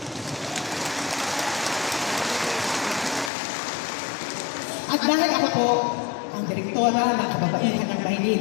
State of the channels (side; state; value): right; drops out; at 3.3 s